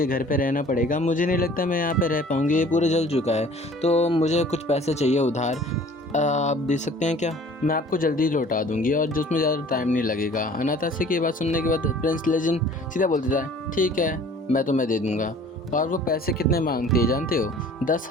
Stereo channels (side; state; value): both; normal; correlation 0.49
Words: घर पे रहना पड़ेगा, मुझे नहीं लगता मैं यहाँ पे रह पाऊँगी, ये पूरा जल चुका है, तो मुझे कुछ पैसे चाहिए उधार, आप दे सकते हैं क्या? मैं आपको जल्दी लौटा दूँगी और जिसमें ज़्यादा टाइम नहीं लगेगा। अनातासिया की बात सुनने के बाद प्रिंस लेजेंड सीधा बोल देता है, ठीक है, मैं तुम्हें दे दूँगा। और वो पैसे कितने मांगती है जानते हो?